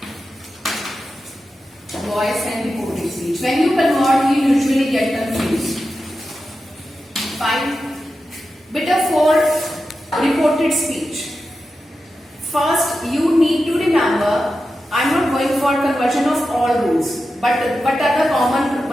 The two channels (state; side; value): normal; both; correlation 0.91